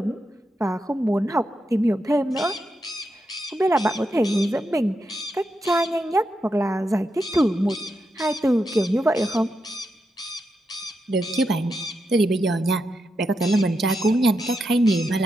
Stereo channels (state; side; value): normal; both; correlation 0.85